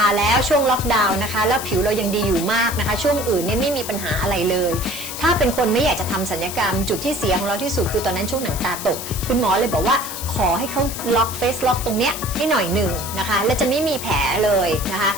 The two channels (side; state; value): left; noise; hiss, 8 dB below the sound